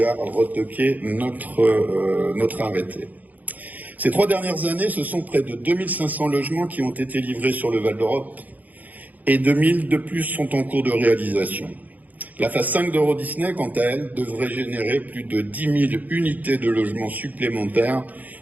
a retoqué notre arrêté. Ces 3 dernières années, ce sont près de 2500 logements qui ont été livrés sur le Val d'Europe et 2000 de plus sont en cours de réalisation. La phase 5 d'Euro Disney, quant à elle, devrait générer plus de 10 000 unités de logements supplémentaires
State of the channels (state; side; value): late; left; 0.080 ms